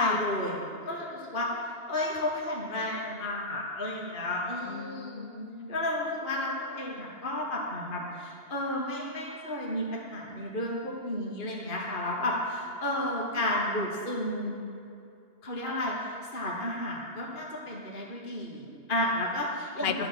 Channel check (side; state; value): right; late; 2.8 ms